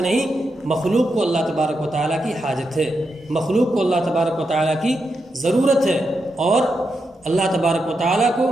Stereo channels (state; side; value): normal; both; correlation 0.86